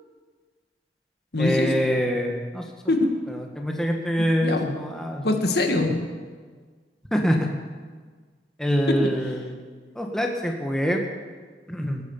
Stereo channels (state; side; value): normal; both; correlation 0.79